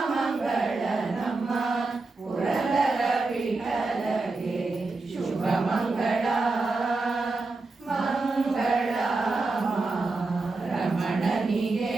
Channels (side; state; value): left; quieter; 3.6 dB